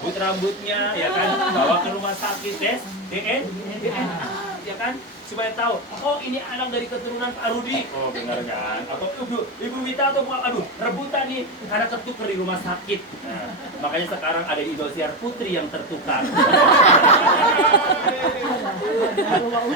rambutnya, ya kan, bawa ke rumah sakit tes DNA, ya kan, supaya tahu, oh ini anak dari keturunan Pak Rudi, oh benar kan, atau Ibu Wita atau rebutan nih, karena ketukar di rumah sakit. Nah, makanya sekarang ada Indosiar Putri yang tertukar.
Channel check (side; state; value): both; normal; correlation 0.13